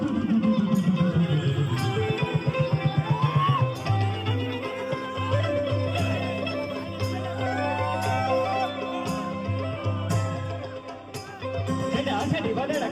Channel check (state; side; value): identical; both; correlation 1.00